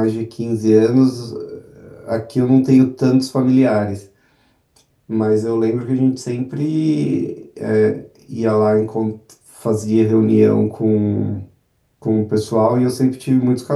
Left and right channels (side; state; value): both; identical; correlation 1.00